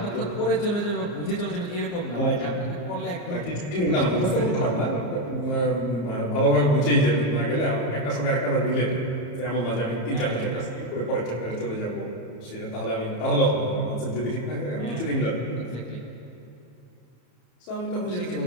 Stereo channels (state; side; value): late; right; 34 ms